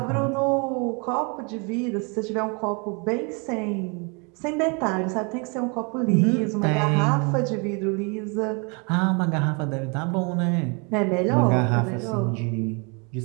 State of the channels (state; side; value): quieter; left; 33.1 dB